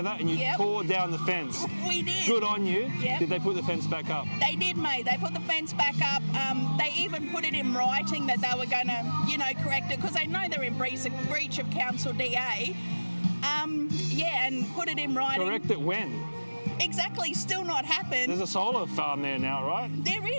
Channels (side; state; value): both; inverted; correlation -1.00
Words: and you tore down the fence. We did. Good on you. Yep. Did they put the fence back up? They did, mate. They put the fence back up. They even put it in writing that they were going to, correct it, because they know they're in breach of council DA. And put it in writing. Correct it when? Exactly, still not happened. There's a solar farm there now, right? There